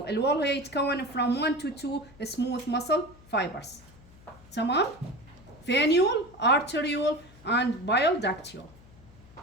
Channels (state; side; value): noise; left; hum, 23 dB below the sound